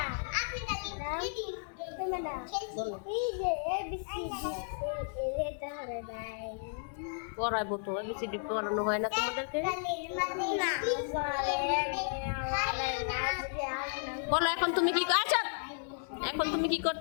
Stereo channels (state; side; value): silent; right; digital silence